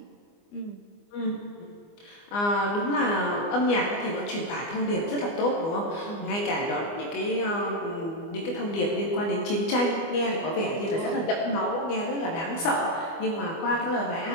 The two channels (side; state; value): right; late; 24 ms